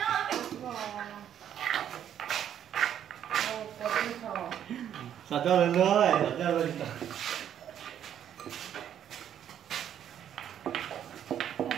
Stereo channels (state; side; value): quieter; left; 9.9 dB